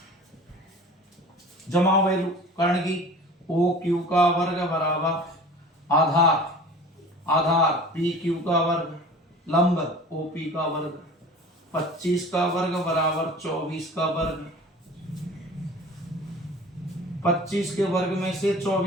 जमा वैल्यू कर्ण की, OQ का वर्ग बराबर आधार, आधार PQ का वर्ग, लंब OP का वर्ग, 25 का वर्ग बराबर 24 का वर्ग, 25 के वर्ग में से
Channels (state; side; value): normal; both; correlation 0.41